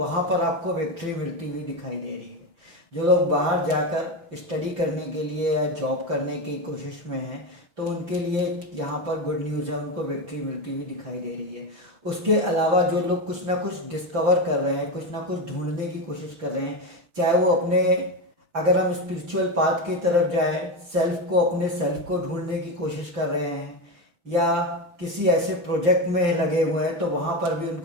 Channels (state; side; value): late; left; 5.9 ms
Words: पर आपको विक्ट्री मिलती हुई दिखाई दे रही है। जो लोग बाहर जाकर स्टडी करने के लिए या जॉब करने की कोशिश में हैं तो उनके लिए यहाँ पर गुड न्यूज़ है, उनको विक्ट्री मिलती हुई दिखाई दे रही है। उसके अलावा जो लोग कुछ ना कुछ डिस्कवर कर रहे हैं, कुछ ना कुछ ढूंढने की कोशिश कर रहे हैं, चाहे वो अपने, अगर हम स्पिरिचुअल पाथ की तरफ जाएं, सेल्फ को, अपने सेल्फ को ढूंढने की कोशिश कर रहे हैं, या किसी ऐसे प्रोजेक्ट में लगे हुए हैं, तो वहाँ पर भी